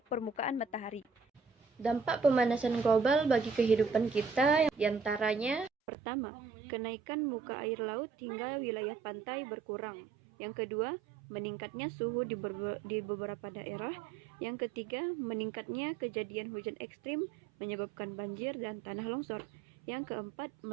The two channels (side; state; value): left; drops out; at 5.7 s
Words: permukaan matahari. Dampak pemanasan global bagi kehidupan kita diantaranya: pertama, kenaikan muka air laut hingga wilayah pantai berkurang. Yang kedua, meningkatnya suhu di beberapa daerah. Yang ketiga, meningkatnya kejadian hujan ekstrim menyebabkan banjir dan tanah longsor. Yang keempat,